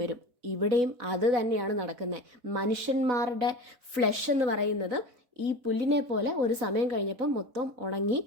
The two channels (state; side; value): late; left; 4.1 ms